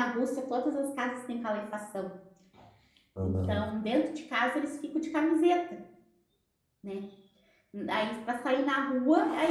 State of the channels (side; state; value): both; identical; correlation 1.00